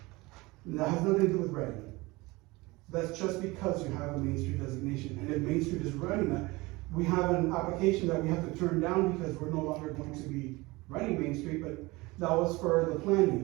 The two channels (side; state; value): left; quieter; 22.5 dB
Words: And that has nothing to do with ready. That's just because you have a Main Street designation, and if Main Street is running that, we have an application that we have to turn down because we're no longer going to be running Main Street, but that was for the